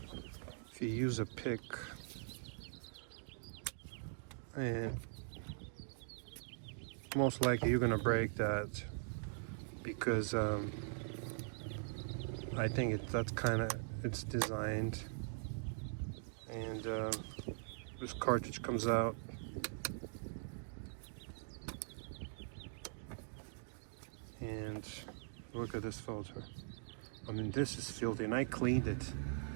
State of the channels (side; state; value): left; silent; digital silence